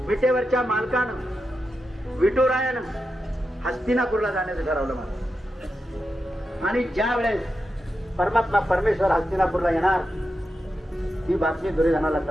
विटेवरच्या मालकानं विठुरायानं हस्तिनापूरला जाण्याचं ठरवलं मला. आणि ज्या वेळेस परमात्मा परमेश्वर हस्तिनापूरला येणार ही बातमी दुर्योधनाला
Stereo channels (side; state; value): both; normal; correlation 0.88